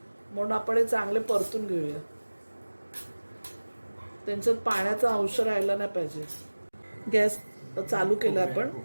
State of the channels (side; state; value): both; inverted; correlation -1.00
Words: म्हणून आपण हे चांगले परतून घेऊया. त्यांच्यात पाण्याचा अंश राहायला नाही पाहिजे. गॅस चालू केला आपण.